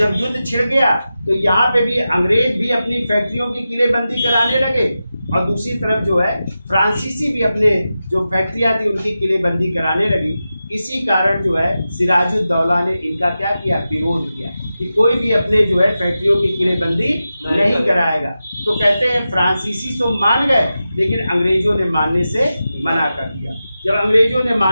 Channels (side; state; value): both; inverted; correlation -0.92